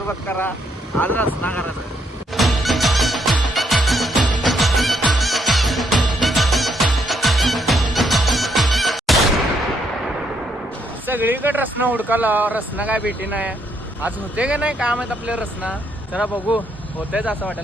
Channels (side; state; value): both; normal; correlation 0.73